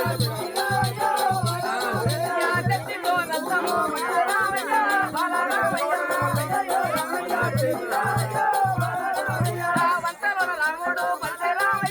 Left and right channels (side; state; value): both; identical; correlation 1.00